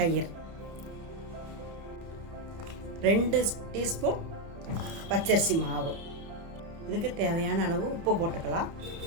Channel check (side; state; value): left; late; 30 ms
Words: 2 டீஸ்பூன் பச்சரிசி மாவு, இதுக்கு தேவையான அளவு உப்பு போட்டுக்கலாம்.